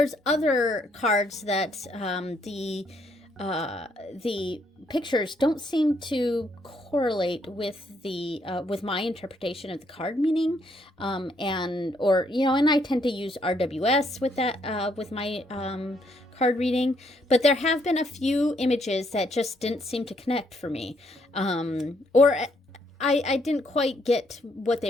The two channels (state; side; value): normal; both; correlation 0.72